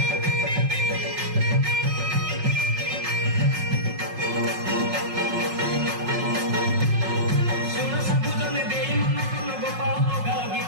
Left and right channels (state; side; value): late; left; 5.5 ms